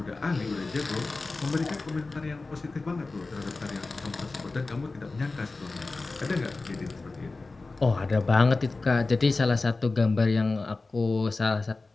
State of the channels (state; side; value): quieter; right; 3.6 dB